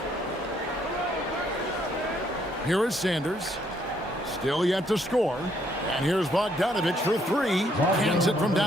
Here is Sanders. Still yet to score. And here's Bogdanovich for 3. Hands it from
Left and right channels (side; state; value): both; normal; correlation 0.69